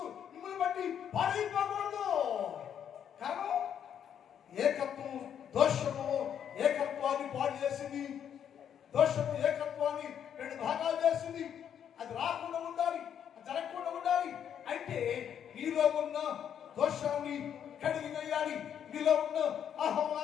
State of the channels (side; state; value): right; quieter; 8.9 dB